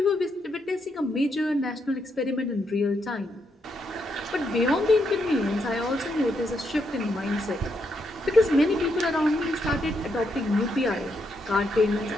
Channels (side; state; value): both; normal; correlation 0.79